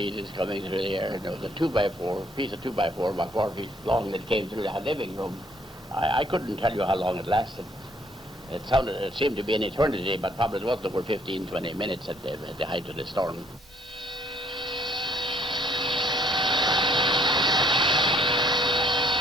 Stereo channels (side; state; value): both; normal; correlation 0.64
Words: coming through the air. And there was a 2x4, piece of 2x4 about 4 feet long that came through the living room. I couldn't tell you how long it lasted. It seemed to be an eternity, but probably it was over 15, 20 minutes at the height of the storm.